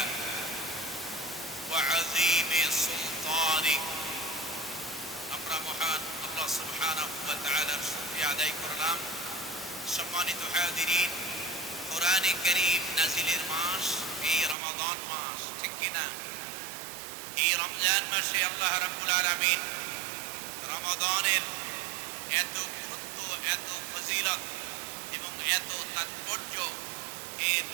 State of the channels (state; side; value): drops out; left; at 14.6 s